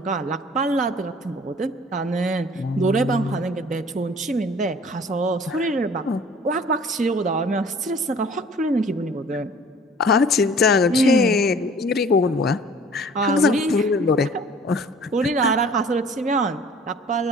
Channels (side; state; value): both; normal; correlation 0.50